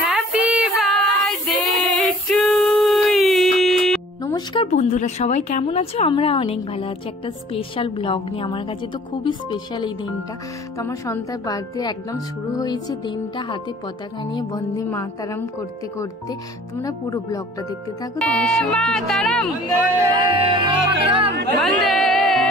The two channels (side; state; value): both; normal; correlation 0.51